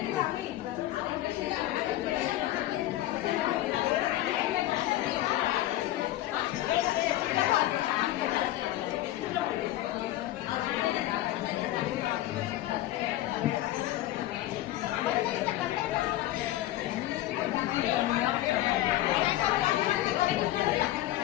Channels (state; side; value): quieter; right; 15.2 dB